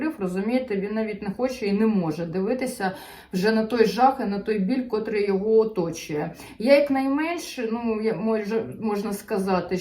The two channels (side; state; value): both; identical; correlation 1.00